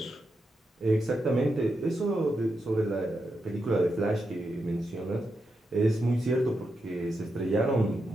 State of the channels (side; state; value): both; normal; correlation 0.86